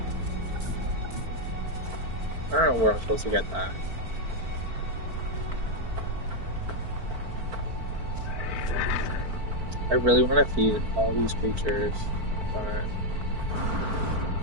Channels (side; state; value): left; late; 4.5 ms